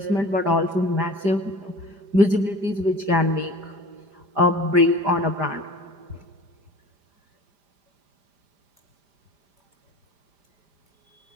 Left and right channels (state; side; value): late; left; 5.0 ms